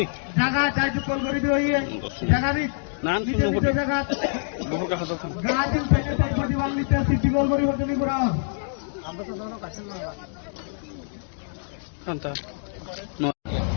জায়গা চাই কল করে দিও জায়গা দিক জায়গা গাজিল থেকে প্রতিবাদ নিতে সিটি কল করি হতে করা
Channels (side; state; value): right; silent; digital silence